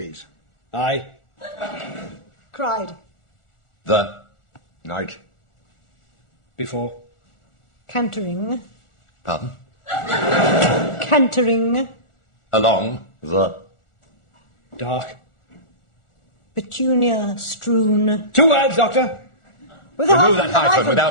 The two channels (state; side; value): late; right; 1.4 ms